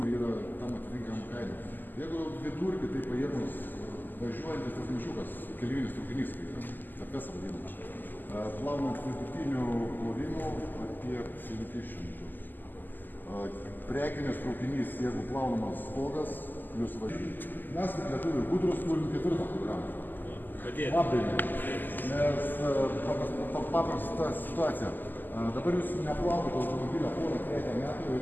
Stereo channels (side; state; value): right; late; 0.088 ms